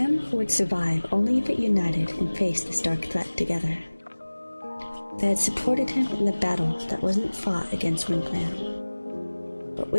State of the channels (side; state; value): both; inverted; correlation -1.00